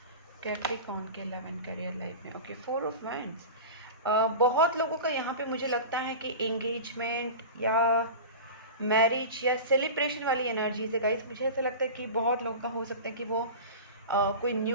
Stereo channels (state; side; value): inverted; both; correlation -0.31